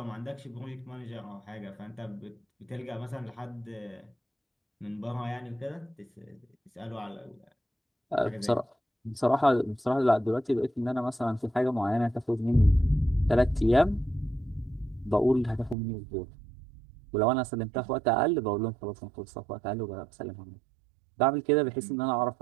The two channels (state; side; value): drops out; left; at 15.8 s